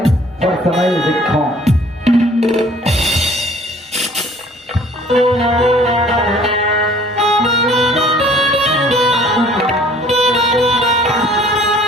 और समय देखो।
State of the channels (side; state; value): both; normal; correlation 0.54